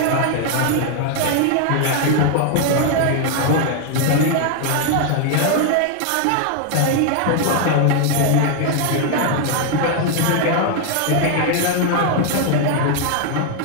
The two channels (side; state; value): both; different; correlation 0.00